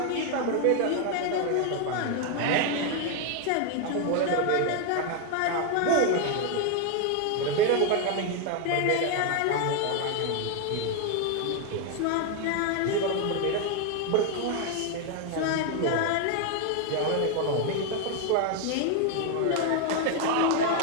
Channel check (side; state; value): both; different; correlation 0.01